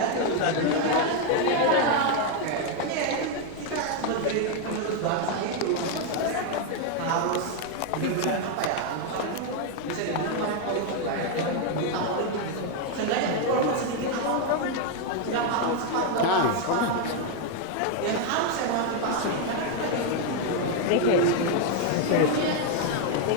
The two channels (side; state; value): both; different; correlation 0.01